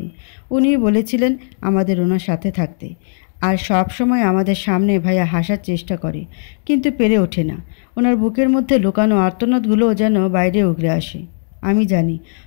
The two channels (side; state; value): right; silent; digital silence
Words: উনি বলেছিলেন আমাদের ওনার সাথে থাকতে। আর সব সময় আমাদের সামনে ভাইয়া হাসার চেষ্টা করে, কিন্তু পেরে ওঠে না। ওনার বুকের মধ্যে লুকানো আর্তনাদগুলোও যেন বাইরে উগরে আসে। আমি জানি